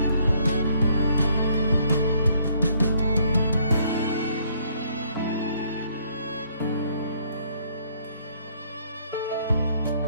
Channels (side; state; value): both; inverted; correlation -0.66